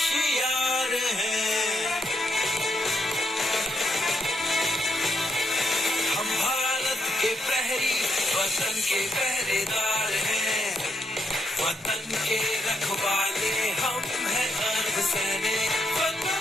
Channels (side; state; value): both; normal; correlation 0.79